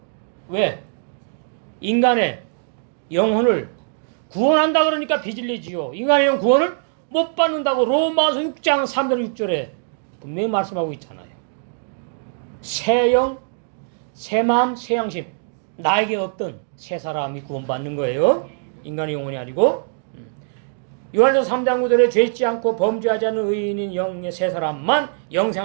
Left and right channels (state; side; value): silent; left; digital silence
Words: 왜? 인간의 영혼을 구원한다 그러니까 비진리지요. 인간의 영혼 구원을 못 받는다고 로마서 6장 3절 6절에 분명히 말씀하고 있잖아요. 새 영, 새 마음, 새 양심. 나에게 없던 새 사람이 구원받는 거예요. 인간의 영혼이 아니고. 요한일서 3장 9절에 죄짓지 않고 범죄하지 않는 의인인 영의 새 사람만